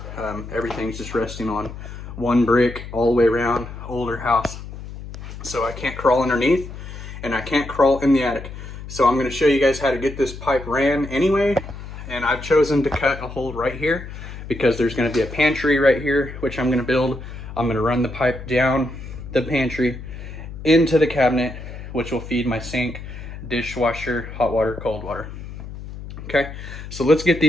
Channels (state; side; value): noise; left; hum, 11 dB below the sound